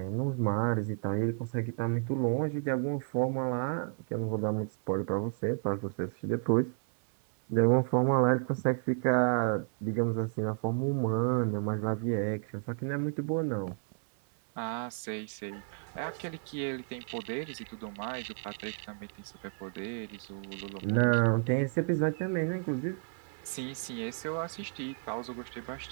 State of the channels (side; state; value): left; silent; 56 dB below the other